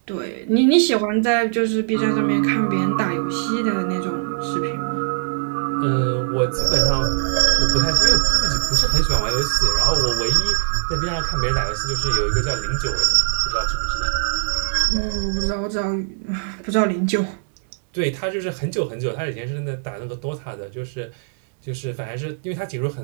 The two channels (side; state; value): left; silent; 65 dB below the other